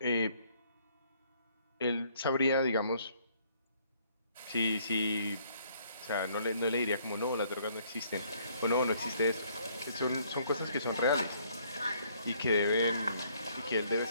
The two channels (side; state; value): both; inverted; correlation -0.64